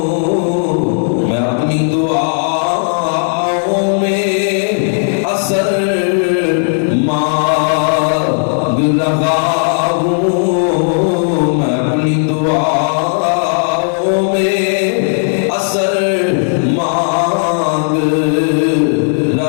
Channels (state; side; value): silent; right; digital silence